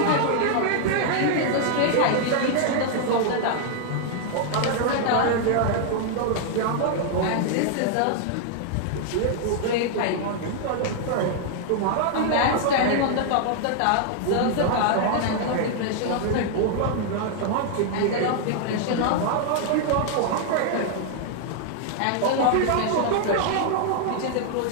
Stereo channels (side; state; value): both; different; correlation -0.01